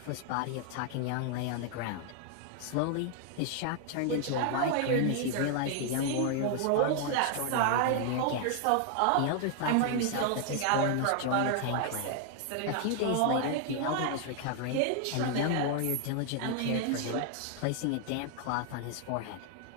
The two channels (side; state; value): both; different; correlation 0.00